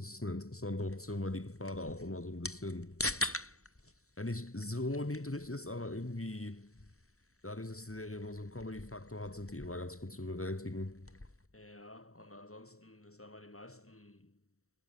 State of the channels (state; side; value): late; right; 0.64 ms